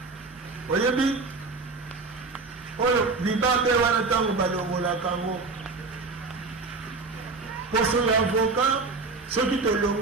oyebi oyo libabe wana ntango balongolaka yango poso ya avocat soki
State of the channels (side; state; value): left; quieter; 4.0 dB